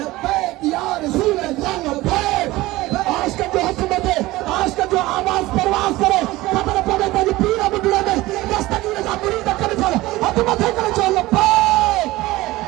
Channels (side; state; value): left; quieter; 18.6 dB